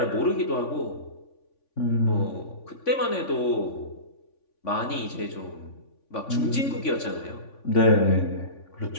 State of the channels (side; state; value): right; late; 3.5 ms